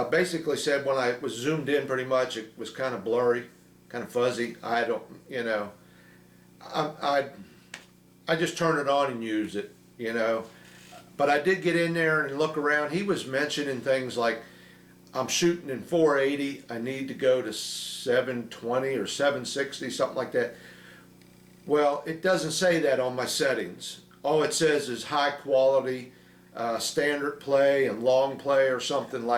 basically said when I was zoomed in pretty much it was kind of blurry, kind of fuzzy. I don't, I just turn it on and use it, But I did get in there and look around. He was mentioning things like I'm shooting in 480. I need to go to 720 or 760, something like that. Well, it doesn't say that on my settings. All it says is high quality, standard play and long play or something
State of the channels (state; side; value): identical; both; correlation 1.00